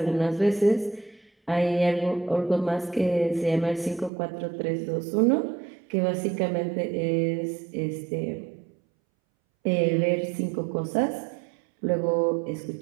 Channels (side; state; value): left; drops out; at 4.1 s